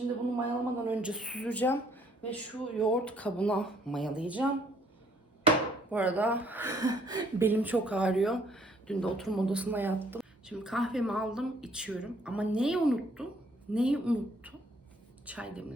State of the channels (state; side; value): normal; both; correlation 0.64